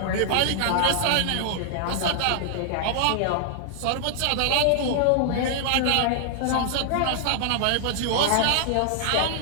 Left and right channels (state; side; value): different; both; correlation -0.01